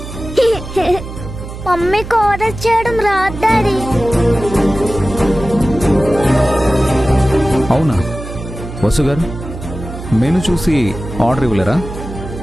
మమ్మీకి ఆర్డర్ చేయడం రాదు డాడీ. అవునా వసు గారు, మెను చూసి ఆర్డర్ ఇవ్వలేరా?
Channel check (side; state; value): right; noise; hum, 11 dB below the sound